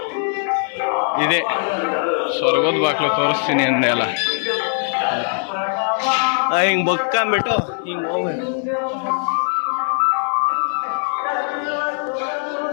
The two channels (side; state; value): right; silent; 55 dB below the other